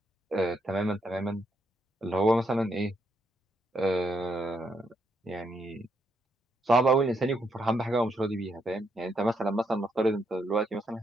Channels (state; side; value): normal; both; correlation 0.77